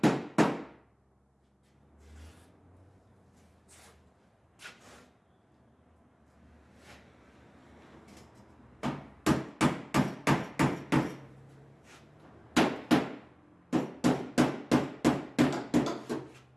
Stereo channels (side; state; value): both; identical; correlation 1.00